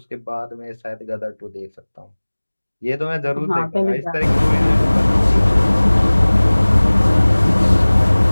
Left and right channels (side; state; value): both; inverted; correlation -1.00